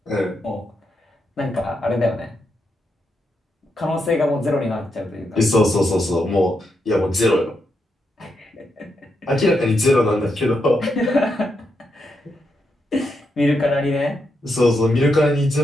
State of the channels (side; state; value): both; normal; correlation 0.82